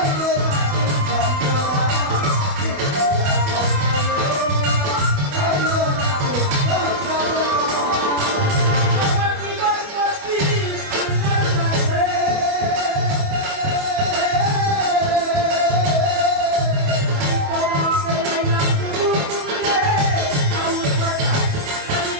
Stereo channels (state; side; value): late; left; 28 ms